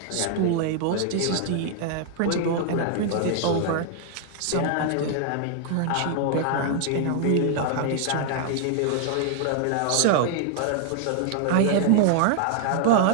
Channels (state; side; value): different; both; correlation 0.00